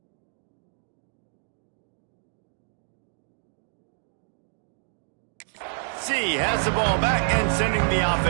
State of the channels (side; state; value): left; silent; digital silence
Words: has the ball back and sending the